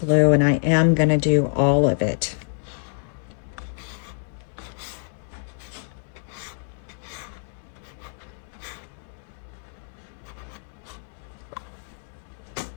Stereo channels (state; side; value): silent; right; 61 dB below the other